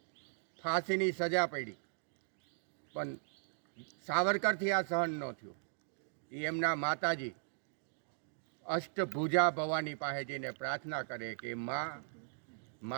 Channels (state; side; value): silent; left; digital silence